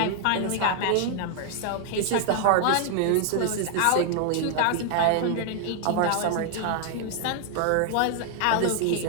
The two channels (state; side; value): different; both; correlation 0.00